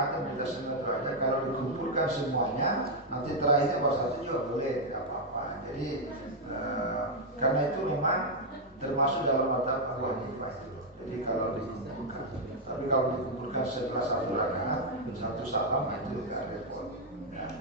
kita sunat aja, kalau dikumpulkan semuanya nanti terakhirnya baru satu juga boleh, tidak apa-apa. Jadi karena itu memang termasuk dalam mazhab Abu Hanifah itu. Jadi kalau dikumpulkan, tapi kalau dikumpulkan setelah satu rakaat satu salam itu tidak repot. Ya,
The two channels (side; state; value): both; normal; correlation -0.01